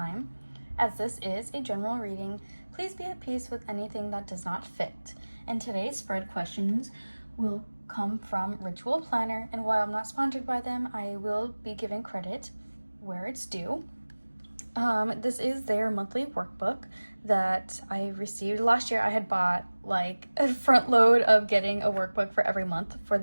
As this is a general reading, please be at peace with anything that does not fit. And today's spread questions will come from Writual Planner, and while I'm not sponsored by them, I will be giving credit where it's due. This is their monthly workbook that I received. Last year I had bought like a front load of getting a workbook for every month for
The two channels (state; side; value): inverted; both; correlation -1.00